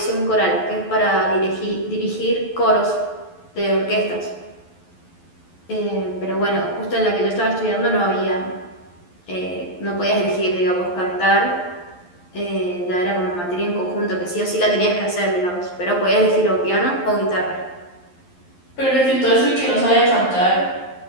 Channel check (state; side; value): late; right; 11 ms